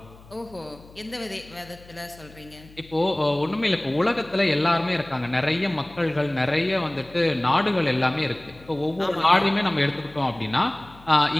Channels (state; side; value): noise; left; hum, 23 dB below the sound